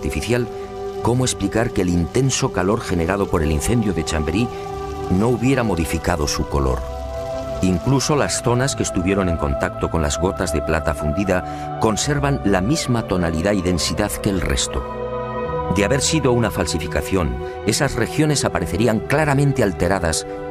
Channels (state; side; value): identical; both; correlation 1.00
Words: ¿cómo explicar que el intenso calor generado por el incendio de Chambéry no hubiera modificado su color? Incluso las zonas que estuvieron en contacto con las gotas de plata fundida conservan la misma tonalidad y densidad que el resto. De haber sido una falsificación, esas regiones aparecerían claramente alteradas